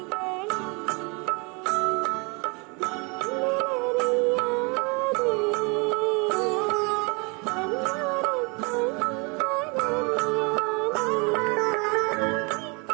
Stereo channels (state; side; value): quieter; left; 31.2 dB